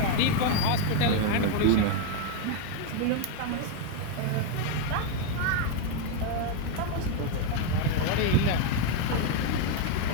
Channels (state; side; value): different; both; correlation 0.01